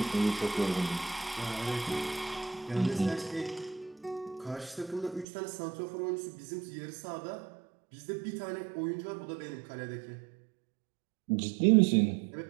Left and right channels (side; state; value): left; drops out; at 5.2 s